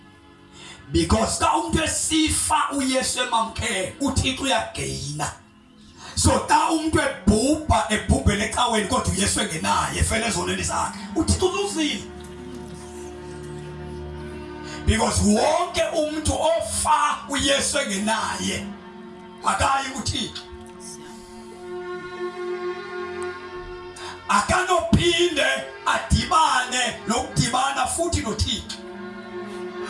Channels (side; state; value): both; identical; correlation 1.00